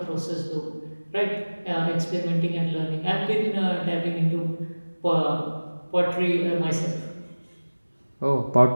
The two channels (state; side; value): inverted; both; correlation -1.00